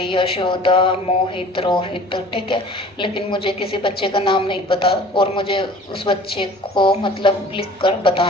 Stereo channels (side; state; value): both; normal; correlation 0.46